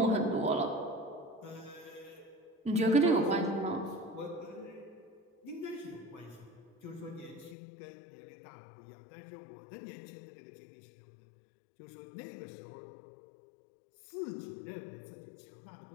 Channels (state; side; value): drops out; right; at 7.6 s